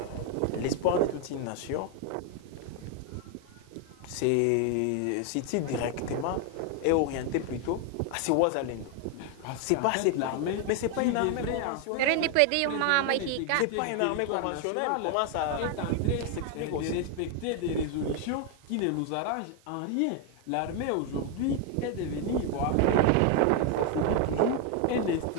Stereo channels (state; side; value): different; both; correlation 0.01